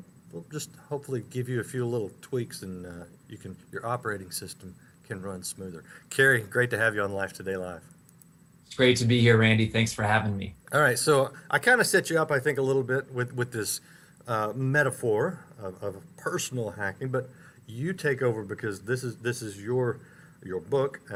just hopefully give you a few little tweaks, and your operating system can run smoother. Kary, great to have you on Life Today Live. It's great to be here, Randy. Thanks for having me. All right, so I kind of set you up, I think, a little bit with this metaphor of personal hacking, but you take over because this is your book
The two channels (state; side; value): identical; both; correlation 1.00